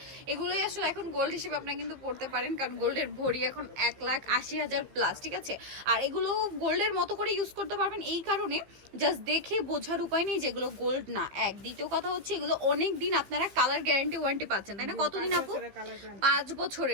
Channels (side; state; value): left; late; 15 ms